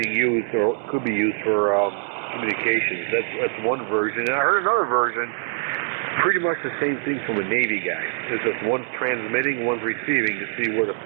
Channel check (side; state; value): left; silent; 63 dB below the other